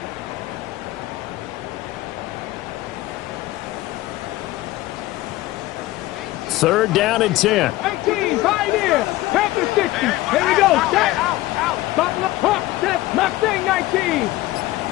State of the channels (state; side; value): quieter; right; 17.4 dB